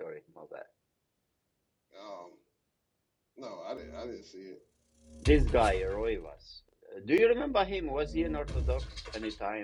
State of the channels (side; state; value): both; identical; correlation 1.00